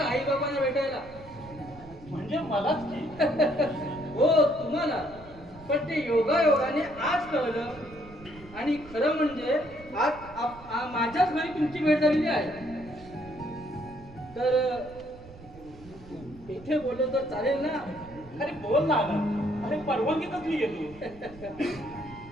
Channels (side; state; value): right; noise; rumble, 19 dB below the sound